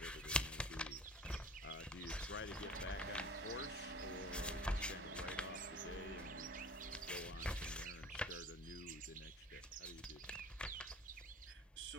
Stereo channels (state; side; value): normal; both; correlation 0.43